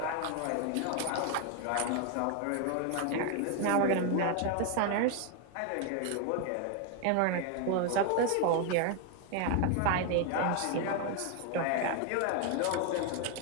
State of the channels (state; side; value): different; both; correlation 0.01